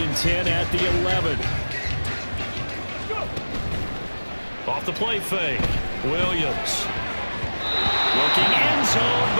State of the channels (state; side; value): inverted; both; correlation -1.00